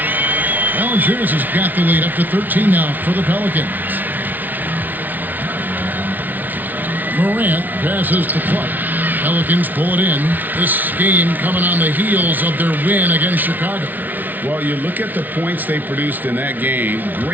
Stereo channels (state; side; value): late; left; 0.082 ms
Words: Valanciunas has got the lead up to 13 now for the Pelicans. Morant passes to Clark. Pelicans pull it in. This game coming on the heels of their win against Chicago. Well, you look at the points they produced in that game.